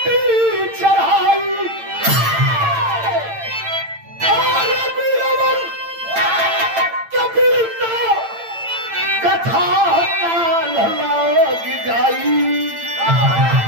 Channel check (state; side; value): late; left; 8.9 ms